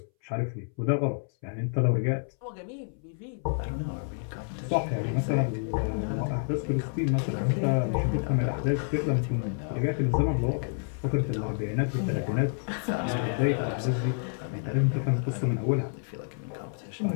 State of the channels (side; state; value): right; silent; 59 dB below the other